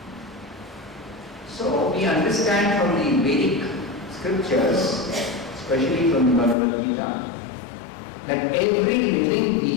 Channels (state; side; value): drops out; right; at 6.6 s